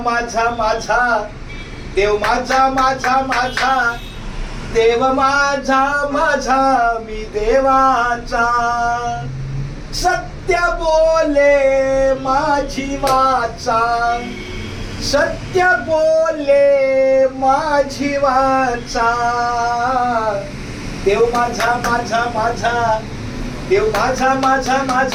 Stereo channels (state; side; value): identical; both; correlation 1.00